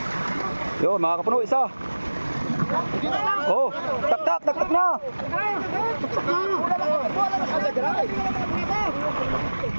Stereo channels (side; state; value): both; inverted; correlation -1.00